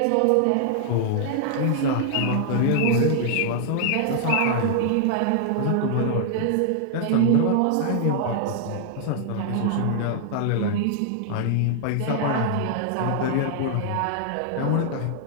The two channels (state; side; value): different; both; correlation -0.01